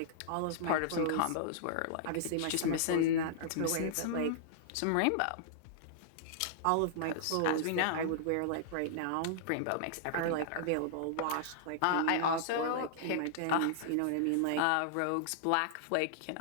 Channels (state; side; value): different; both; correlation -0.01